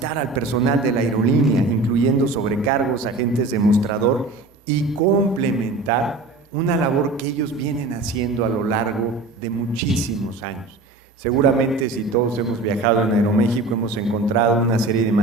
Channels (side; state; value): left; quieter; 3.4 dB